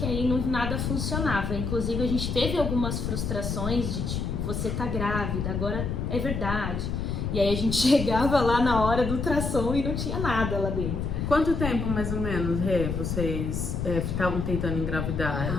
aí nada funcionava. Inclusive a gente teve algumas frustrações de tipo, você tá grávida, agora é verdade. E aí a gente chegava lá na hora do ultrassom e não tinha nada lá dentro. Quanto tempo, mais ou menos, Rê, vocês estavam tentando engravidar,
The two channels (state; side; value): noise; left; rumble, 2 dB below the sound